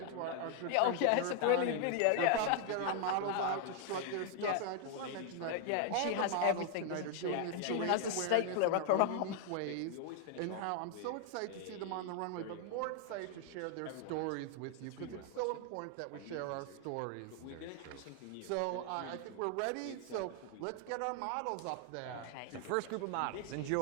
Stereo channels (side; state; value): both; different; correlation 0.00